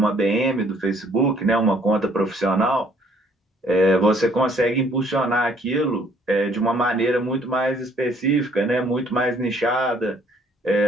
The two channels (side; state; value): both; normal; correlation 0.62